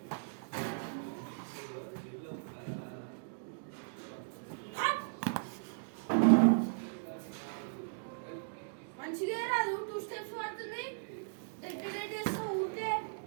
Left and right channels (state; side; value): silent; left; digital silence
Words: మంచిగా రాదు, 2 స్టెప్స్ పడుతుంది. డెడ్ వేస్తావు ఊరికే.